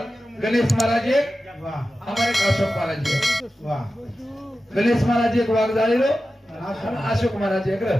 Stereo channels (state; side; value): normal; both; correlation 0.93